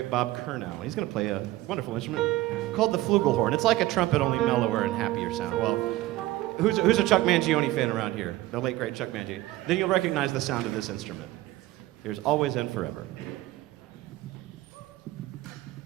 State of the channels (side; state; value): left; quieter; 17.1 dB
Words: Bob Curnow. He's going to play a wonderful instrument called the flugelhorn. It's like a trumpet, only mellower and happier sound. Well, who's a Chuck Mangione fan around here? The late, great Chuck Mangione. Then you'll recognize the sound of this instrument. Here's Always and Forever.